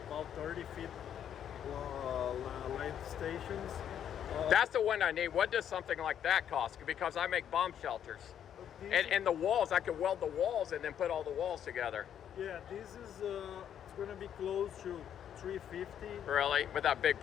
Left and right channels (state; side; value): quieter; right; 9.4 dB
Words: 30 feet length stations. That's the one I need. What does something like that cost? Because I make bomb shelters. And the walls, I can weld the walls and then put all the walls together. Yeah, this is it's going to be close to 350. Really? With that big